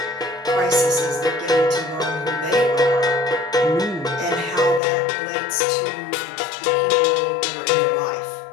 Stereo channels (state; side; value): drops out; right; at 4.8 s